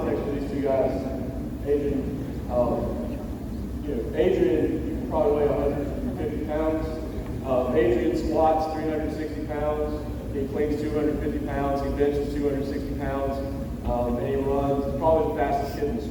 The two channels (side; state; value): both; identical; correlation 1.00